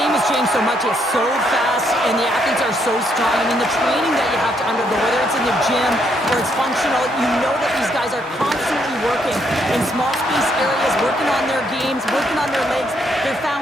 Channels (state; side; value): normal; both; correlation 0.73